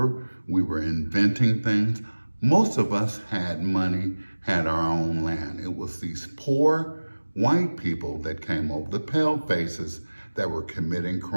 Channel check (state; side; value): inverted; both; correlation -1.00